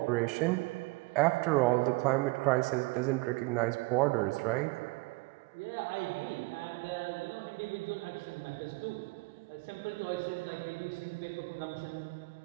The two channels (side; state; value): left; quieter; 24.8 dB